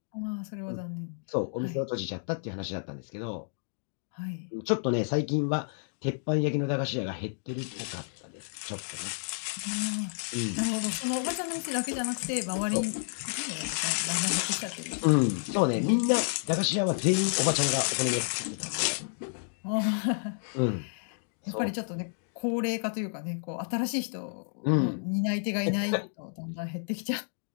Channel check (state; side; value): silent; right; digital silence